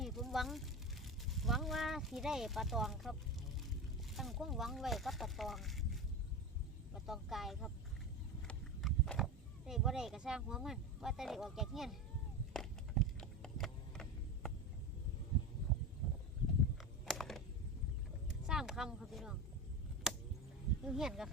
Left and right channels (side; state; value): both; normal; correlation 0.22